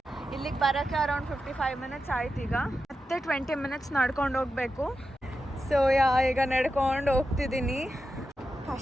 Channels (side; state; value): both; normal; correlation 0.89